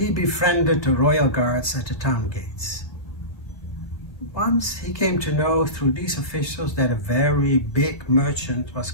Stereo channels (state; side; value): late; right; 1.6 ms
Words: befriended the royal guards at the town gates. Once he came to know through these officials that a very big merchant was